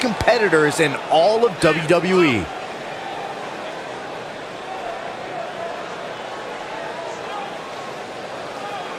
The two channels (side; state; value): both; identical; correlation 1.00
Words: in all of WWE.